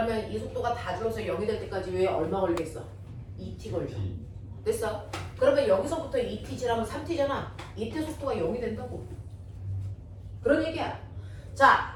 이 속도가 다 줄어서 0이 될 때까지 왜 얼마 걸리겠어? 2t 걸려. 됐어? 그러면 여기서부터 2t 지나면 3t잖아. 이때 속도가 0이 된다고. 그런 얘기야.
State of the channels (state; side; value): identical; both; correlation 1.00